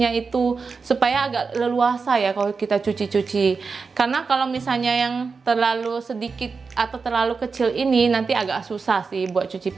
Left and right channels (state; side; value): quieter; left; 4.8 dB